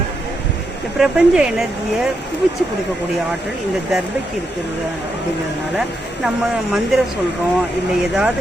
இந்த பிரபஞ்ச எனர்ஜியை குவிச்சு கொடுக்கக்கூடிய ஆற்றல் இந்த தர்பைக்கு இருக்கிறது. அப்படிங்கிறதுனால நம்ம மந்திரம் சொல்கிறோம், இல்லை ஏதாவது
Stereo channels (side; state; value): both; normal; correlation 0.82